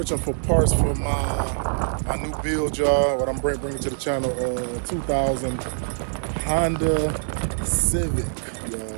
for parts for my new build, y'all. What I'm bringing to the channel, 2000 Honda Civic,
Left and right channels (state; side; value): silent; left; digital silence